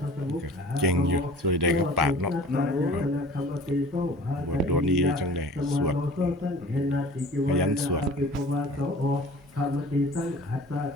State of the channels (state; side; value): normal; both; correlation 0.45